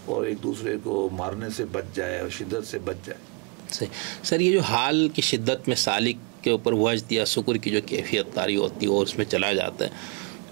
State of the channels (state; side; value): quieter; left; 33.3 dB